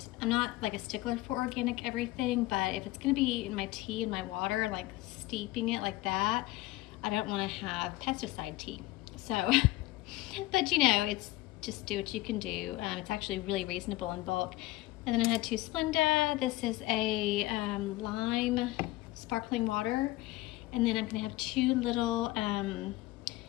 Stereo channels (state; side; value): quieter; right; 18.4 dB